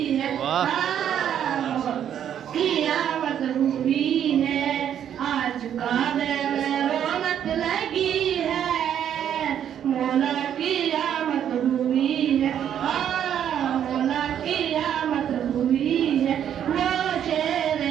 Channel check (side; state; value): left; quieter; 9.6 dB